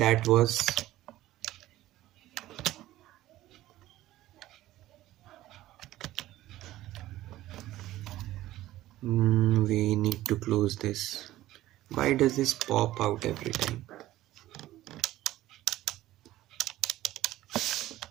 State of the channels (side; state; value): left; quieter; 15.3 dB